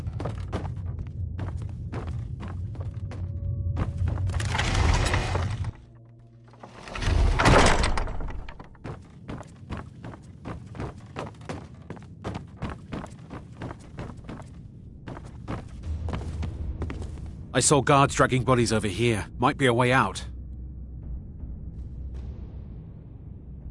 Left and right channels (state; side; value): identical; both; correlation 1.00